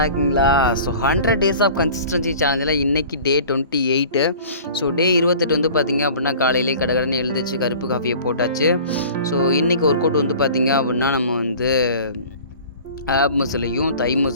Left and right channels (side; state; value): both; inverted; correlation -0.44